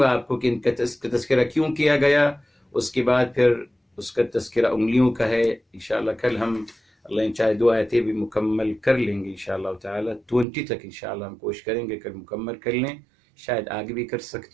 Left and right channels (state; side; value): drops out; left; at 10.5 s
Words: آپ کو کہ ان کا تذکرہ کیوں کیا گیا، اس کے بعد پھر اس کا تذکرہ انگلیوں کا ہے. انشاءاللہ کل ہم اللہ چاہے 2 آیتیں بھی مکمل کر لیں گے انشاءاللہ تعالی. 20 تک انشاءاللہ ہم کوشش کریں گے کل مکمل کر لیں، شاید آگے بھی کر